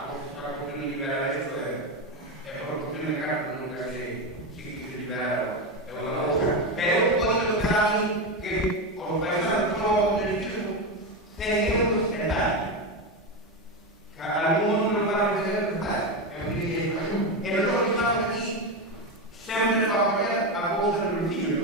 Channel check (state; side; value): normal; both; correlation 0.13